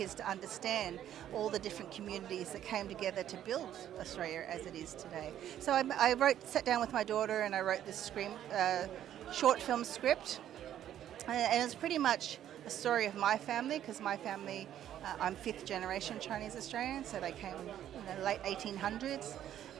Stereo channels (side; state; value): left; quieter; 11.1 dB